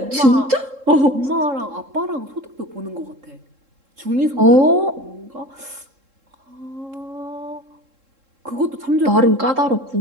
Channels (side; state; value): left; late; 3.7 ms